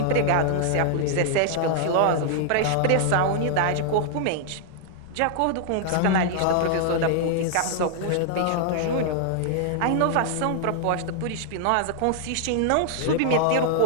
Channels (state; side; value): different; both; correlation 0.00